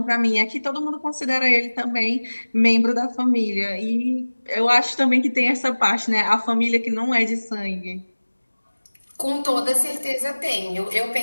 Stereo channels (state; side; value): inverted; both; correlation -1.00